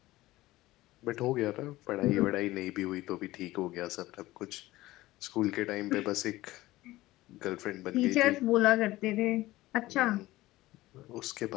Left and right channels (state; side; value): quieter; right; 17.6 dB